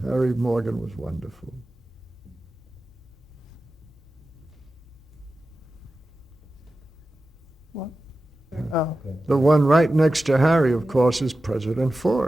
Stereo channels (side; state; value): both; normal; correlation 0.94